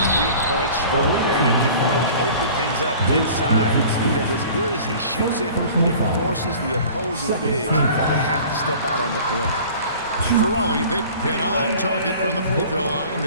stroke there. It can really open things up inside because as good as he shoots it, it forces the opposing big to have to step out on the perimeter. For Raleigh, they've been on target from the free throw line.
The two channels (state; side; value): inverted; both; correlation -0.45